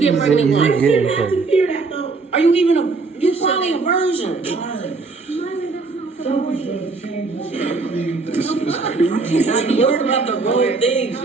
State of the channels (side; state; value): left; quieter; 4.0 dB